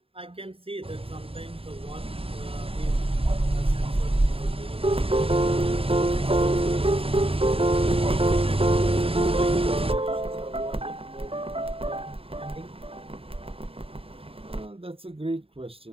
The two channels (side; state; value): left; late; 0.27 ms